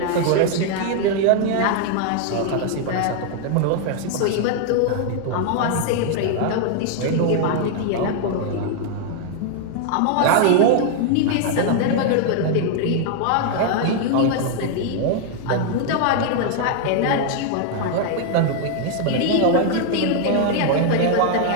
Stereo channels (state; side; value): different; both; correlation 0.00